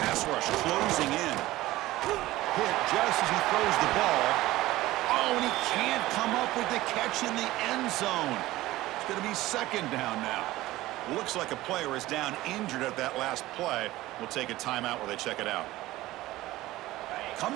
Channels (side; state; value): left; quieter; 17.1 dB